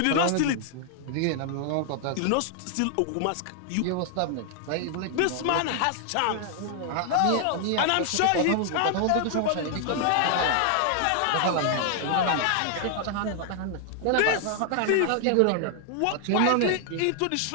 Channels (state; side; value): different; both; correlation 0.00